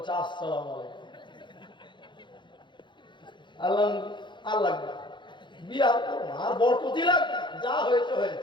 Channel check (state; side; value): late; right; 0.23 ms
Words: আসসালামু আলাইকুম। আল্লাহ আর লাগবে বিয়ে আর করো না, আর বরকতই লাগবে, যা হয়েছে